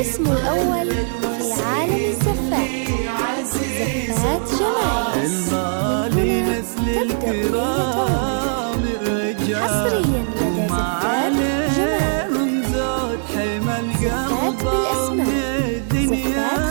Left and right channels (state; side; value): silent; left; digital silence